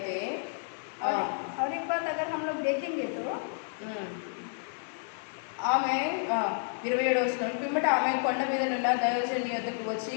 और एक बात अगर हम लोग देखेंगे तो ఆమె 27వ వచనం పిమ్మట ఆమె కొండ మీద నున్న దైవజనుని వద్దకు వచ్చి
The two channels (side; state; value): right; silent; digital silence